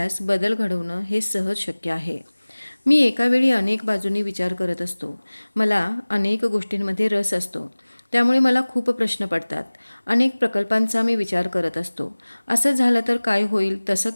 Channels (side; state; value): both; inverted; correlation -1.00